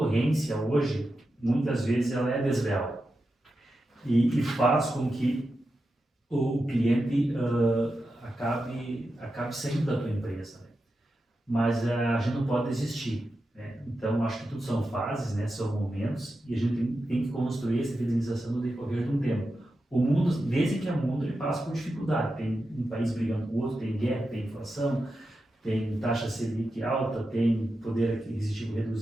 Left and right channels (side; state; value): both; normal; correlation 0.90